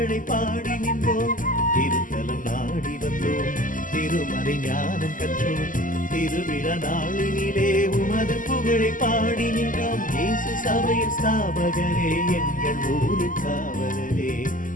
பாடி நின்றோம். திருத்தலம் நாடி வந்தோம், திருமறை ஞானம் கற்றோம், திருவிழா நாளினிலே உமது புகழை பாடி நின்றோம். இயேசு சபையின் ஸ்தாபகரே, எங்கள் ஊரின் காவலரே,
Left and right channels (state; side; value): late; right; 0.38 ms